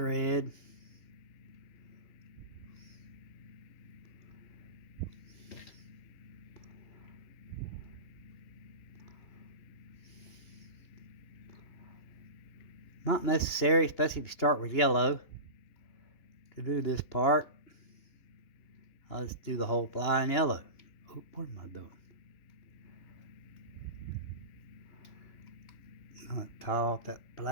Not necessary, especially if you start with yellow, to do this part. I'll just do the whole fly in yellow. Oh, what am I doing? I'll tie off that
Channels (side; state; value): right; late; 2.9 ms